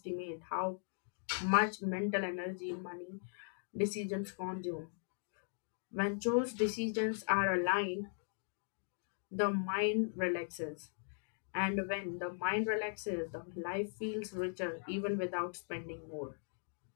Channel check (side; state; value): right; silent; digital silence